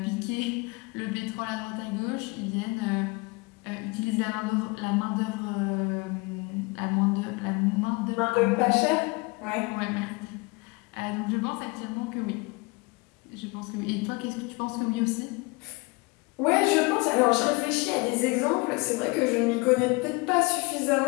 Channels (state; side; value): quieter; right; 26.6 dB